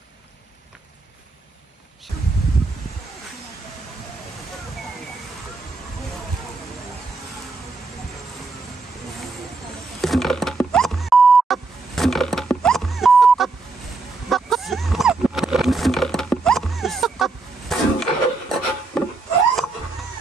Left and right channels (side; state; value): left; quieter; 3.7 dB